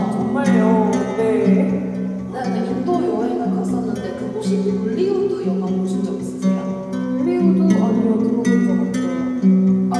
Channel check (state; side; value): identical; both; correlation 1.00